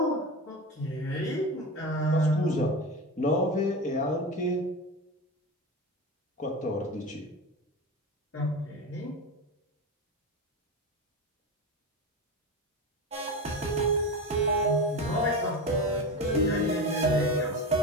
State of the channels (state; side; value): normal; both; correlation 0.23